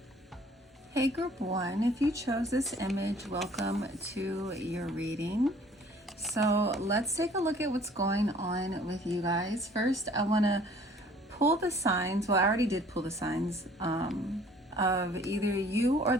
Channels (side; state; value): both; normal; correlation 0.54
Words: Hey group 1, if you chose this image, welcome to your reading. So let's take a look at what's going on with you guys. First, I want to pull the signs. Well, I already did pull the signs of either you or